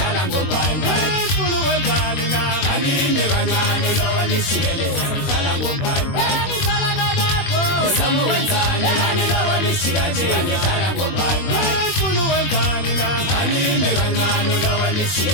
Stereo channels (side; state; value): right; late; 21 ms